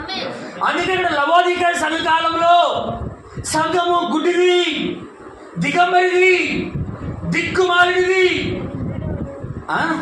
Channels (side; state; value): both; identical; correlation 1.00